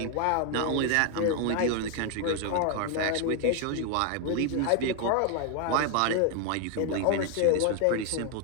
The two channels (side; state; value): both; different; correlation 0.00